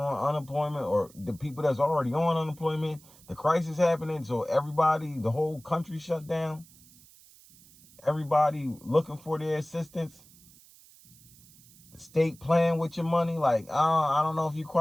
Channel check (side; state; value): right; noise; hiss, 25 dB below the sound